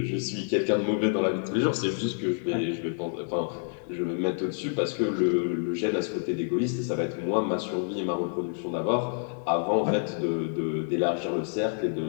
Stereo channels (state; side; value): silent; right; 59 dB below the other